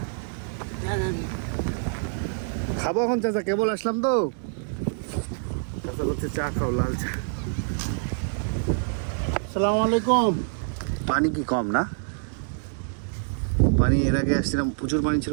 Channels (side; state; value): left; silent; digital silence